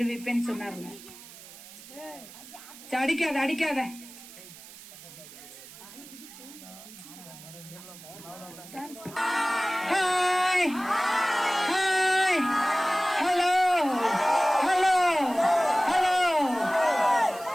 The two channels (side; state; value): right; noise; hiss, 17 dB below the sound